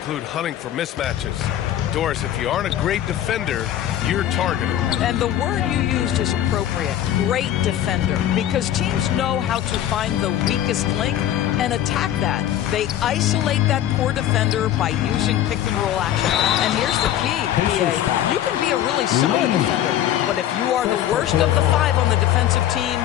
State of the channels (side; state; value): right; quieter; 11.6 dB